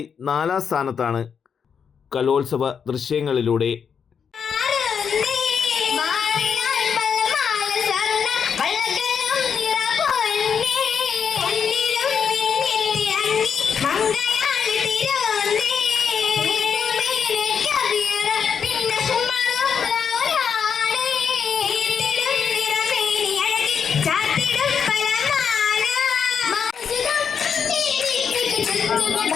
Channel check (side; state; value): right; quieter; 6.9 dB